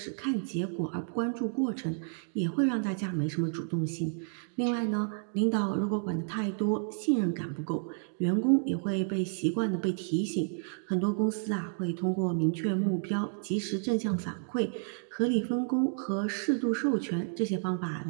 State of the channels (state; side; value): silent; left; digital silence